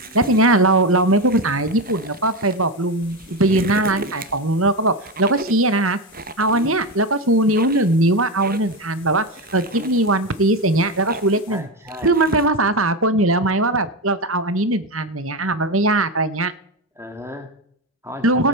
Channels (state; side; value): normal; both; correlation 0.15